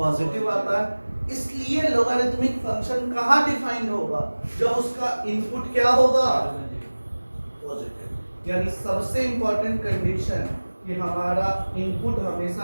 आता है। इसलिए लॉगरिथमिक फंक्शन कहाँ डिफाइंड होगा, जब उसका इनपुट क्या होगा, पॉजिटिव। यानी सबसे इंपॉर्टेंट कंडीशन कि हमारा इनपुट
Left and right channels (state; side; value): inverted; both; correlation -1.00